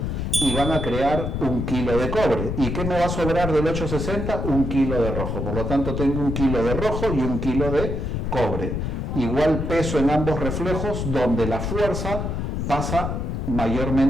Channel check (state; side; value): noise; left; rumble, 2 dB below the sound